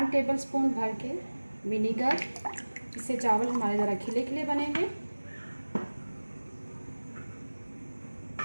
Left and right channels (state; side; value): inverted; both; correlation -1.00